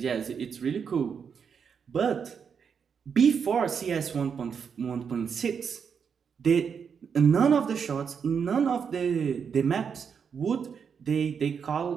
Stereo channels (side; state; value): left; quieter; 6.7 dB